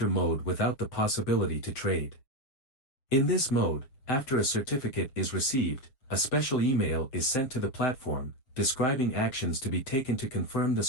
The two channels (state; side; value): late; right; 7.7 ms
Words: mode without the possibility to trade. In this mode, after a certificate is received, a special email is sent to the platform, describing actions to be taken to confirm the